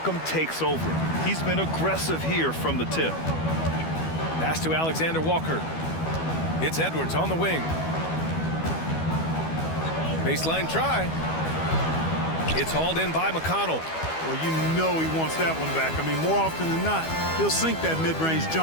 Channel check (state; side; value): late; right; 12 ms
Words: takes over. He's been aggressive here from the tip. Pass to Alexander Walker. It's Edwards on the wing. Baseline try. It's hauled in by McConnell. Well, you know he wants that one back. I mean, more often than not, he'll sink that mid-range